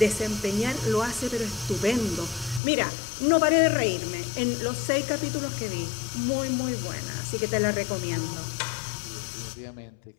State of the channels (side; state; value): right; drops out; at 2.6 s